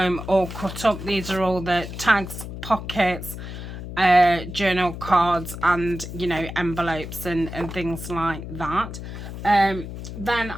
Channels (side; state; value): left; noise; hum, 9 dB below the sound